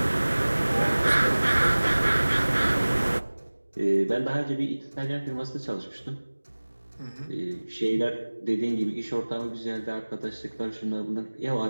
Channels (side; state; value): both; inverted; correlation -1.00